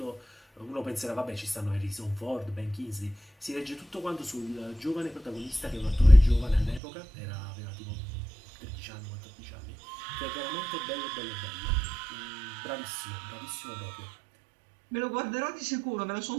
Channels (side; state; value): left; drops out; at 6.8 s